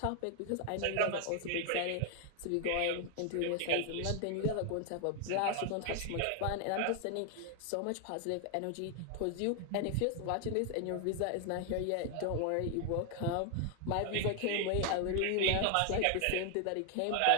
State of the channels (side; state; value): both; different; correlation 0.00